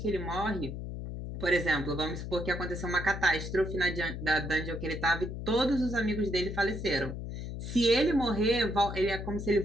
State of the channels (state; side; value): noise; left; hum, 7 dB below the sound